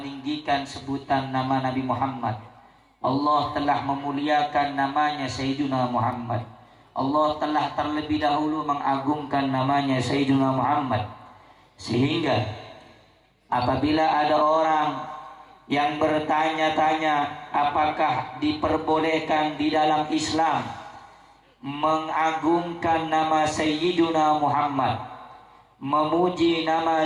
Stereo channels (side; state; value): both; identical; correlation 1.00